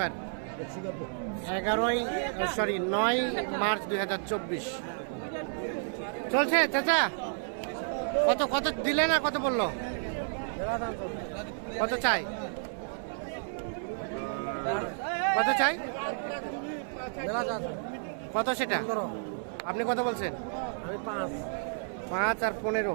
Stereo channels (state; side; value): silent; left; 57 dB below the other